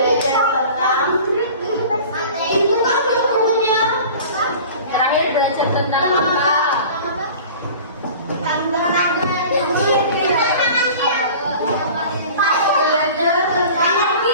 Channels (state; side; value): inverted; both; correlation -0.41